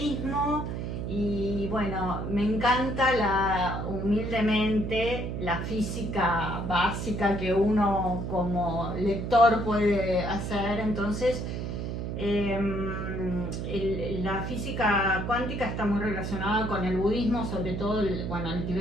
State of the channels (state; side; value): noise; right; hum, 4 dB below the sound